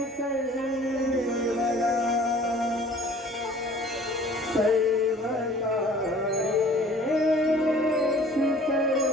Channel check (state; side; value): normal; both; correlation 0.50